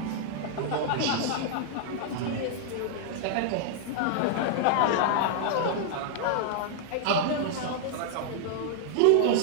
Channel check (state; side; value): different; both; correlation -0.01